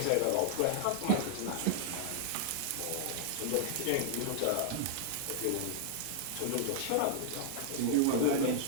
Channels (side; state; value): both; different; correlation -0.01